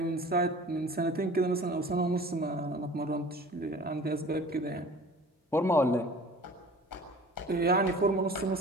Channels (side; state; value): both; normal; correlation 0.44